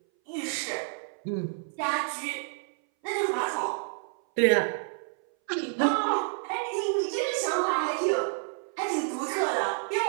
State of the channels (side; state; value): left; silent; 58 dB below the other